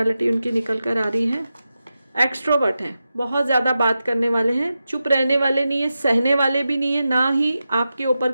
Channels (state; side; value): inverted; both; correlation -0.91